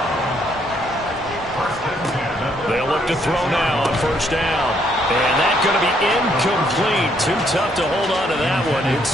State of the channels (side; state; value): both; normal; correlation 0.70